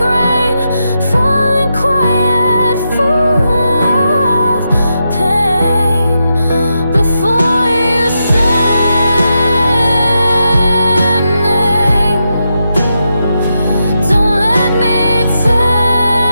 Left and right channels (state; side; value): inverted; both; correlation -0.85